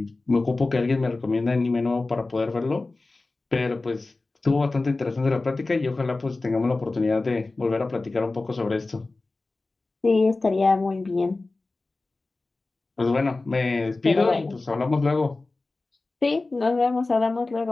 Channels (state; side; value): quieter; right; 3.3 dB